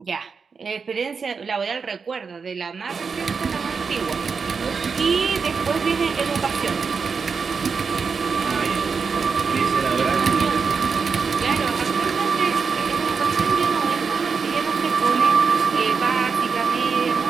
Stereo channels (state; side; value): quieter; left; 5.4 dB